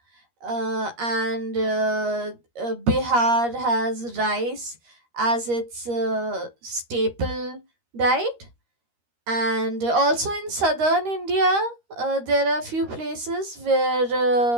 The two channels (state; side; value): late; left; 13 ms